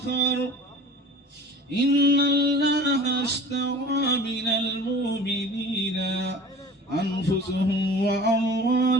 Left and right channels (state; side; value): normal; both; correlation 0.42